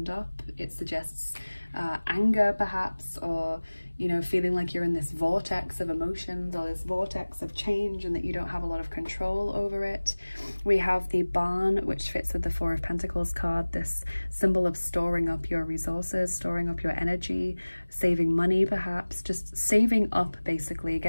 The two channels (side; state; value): both; inverted; correlation -1.00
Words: up. It suggests anger perhaps, or, you know, feeling like you're in this vortex of emotions or this vortex of change and that you don't have a lot of control over it. We have the Barn, which fits with the 4 of Pentacles card, this symbol of storing up your resources, storing up your energy, saving money perhaps, just saving up basically,